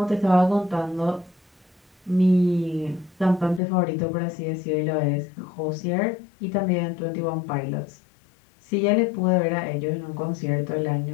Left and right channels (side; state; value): right; drops out; at 3.6 s